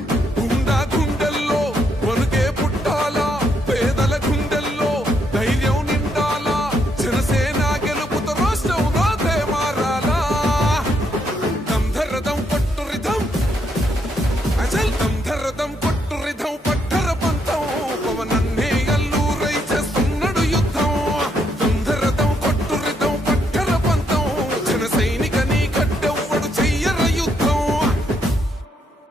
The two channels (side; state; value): both; normal; correlation 0.75